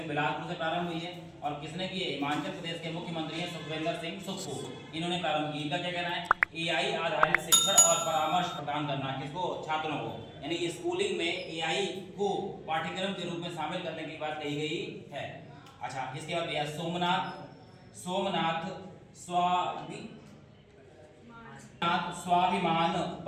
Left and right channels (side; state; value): both; identical; correlation 1.00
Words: बिलासपुर से प्रारंभ हुई है। और किसने की है? हिमाचल प्रदेश के मुख्यमंत्री हैं सुखविंदर सिंह सुक्खू, इन्होंने प्रारंभ की। इनका क्या कहना है? एआई आधारित शिक्षण और परामर्श प्रदान करना किसको? छात्रों को। यानी स्कूलिंग में एआई को पाठ्यक्रम के रूप में शामिल करने की बात कही गई है। अच्छा, इसके बाद भैया सोमनाथ स्वाभिमान